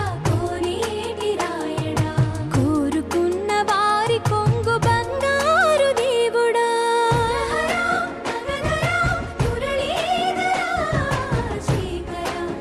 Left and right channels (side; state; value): both; identical; correlation 1.00